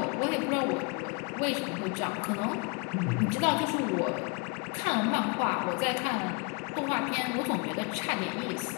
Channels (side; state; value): right; quieter; 31.2 dB